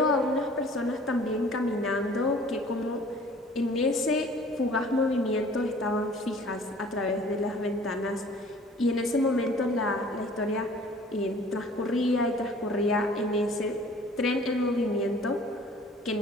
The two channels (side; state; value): both; normal; correlation 0.50